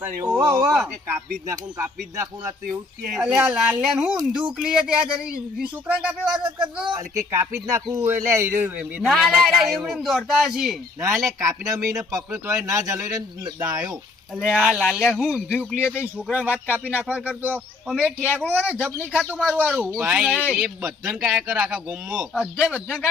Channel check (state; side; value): quieter; right; 3.6 dB